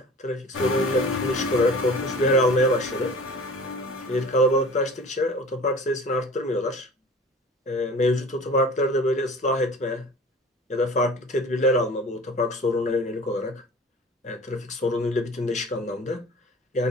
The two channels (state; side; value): normal; both; correlation 0.42